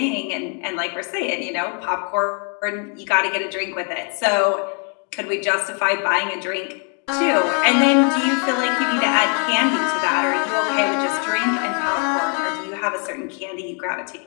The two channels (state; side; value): quieter; right; 38.9 dB